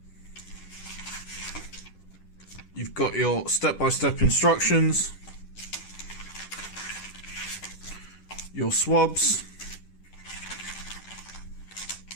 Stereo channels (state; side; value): late; right; 10 ms